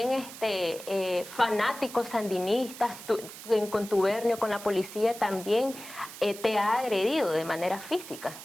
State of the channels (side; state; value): right; noise; hiss, 14 dB below the sound